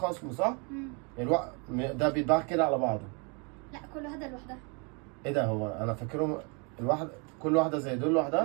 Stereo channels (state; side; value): quieter; left; 33.7 dB